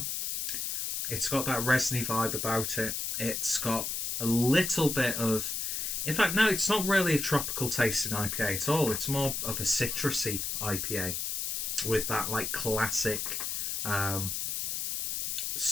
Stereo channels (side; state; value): left; noise; hiss, 1 dB below the sound